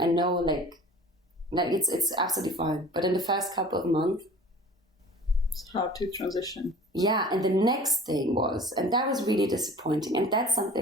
know like it's absolutely fine. But in the first couple of months, it's hard to transition. Yeah, and the next thing was, and that was really disappointing, and that's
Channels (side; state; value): both; normal; correlation 0.44